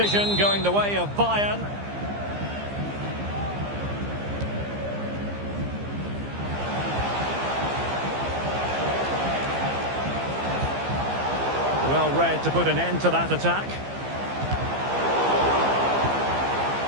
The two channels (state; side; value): late; left; 15 ms